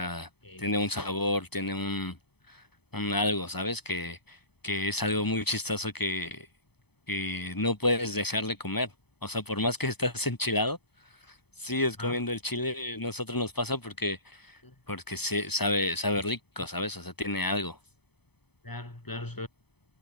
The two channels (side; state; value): right; late; 0.98 ms